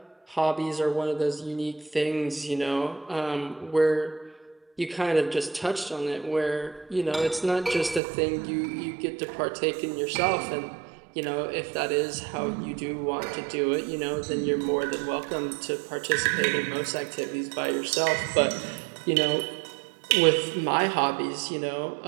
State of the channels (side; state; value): left; drops out; at 8.0 s